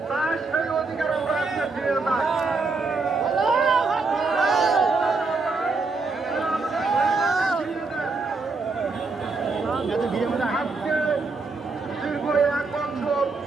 তার সেই অধিকার আমরা আজকে ফিরে পাই। আজকে দীর্ঘ 1 বছর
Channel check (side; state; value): left; quieter; 4.0 dB